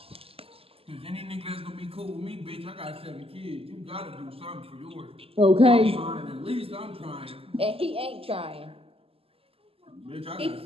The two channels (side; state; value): left; late; 0.28 ms